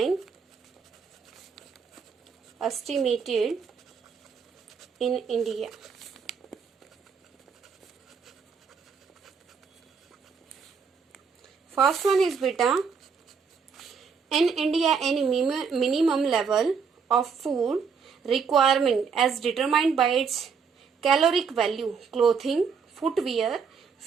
estimated in India. First one is beta. In India, any minimum level of food requirement as determined by its caloric value, clothing, footwear,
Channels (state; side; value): quieter; left; 5.9 dB